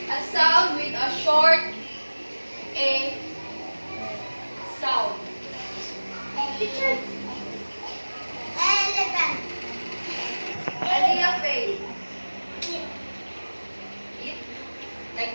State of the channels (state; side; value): inverted; both; correlation -1.00